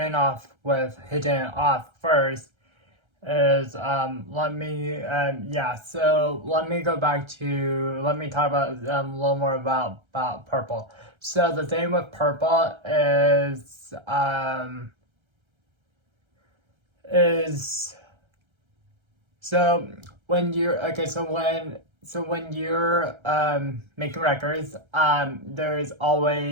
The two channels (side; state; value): left; late; 1.3 ms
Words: off with hitting it off first is let me go back to let me talk about a little more about purple. So the thing with purple is so when you're okay so when you're making records, there's